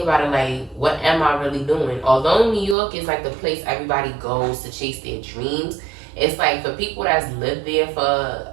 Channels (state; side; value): drops out; left; at 2.8 s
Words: about it, like, what am I really doing? Although New York is like the place everybody goes to chase their dreams, it's like for people that's lived there